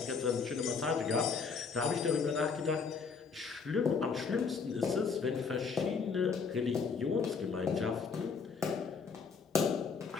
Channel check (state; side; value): quieter; right; 5.3 dB